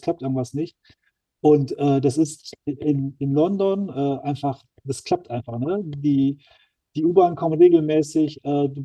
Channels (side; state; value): both; identical; correlation 1.00